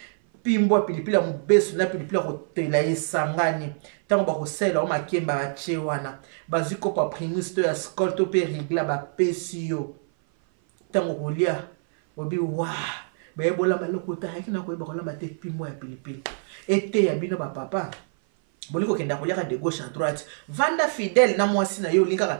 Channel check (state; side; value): silent; left; 56 dB below the other